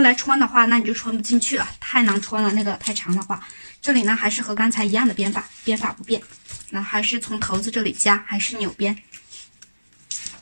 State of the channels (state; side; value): inverted; both; correlation -1.00